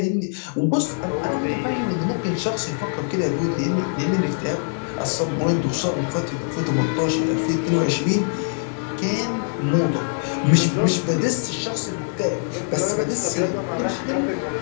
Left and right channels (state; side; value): silent; right; 63 dB below the other